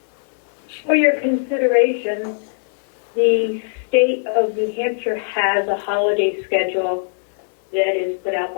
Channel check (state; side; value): silent; right; 65 dB below the other